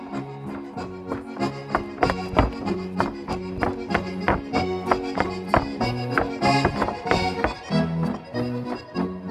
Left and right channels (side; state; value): both; identical; correlation 1.00